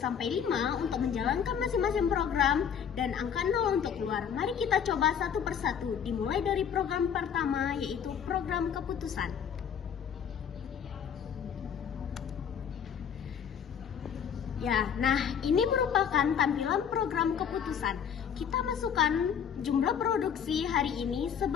5 untuk menjalankan masing-masing program, dan angka 0 untuk keluar. Mari kita coba satu persatu, dimulai dari program pertama, yaitu program keputusan. Ya, nah ini merupakan tampilan program keputusan. Kita masukkan jumlah produksi hari ini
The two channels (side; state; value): right; quieter; 7.8 dB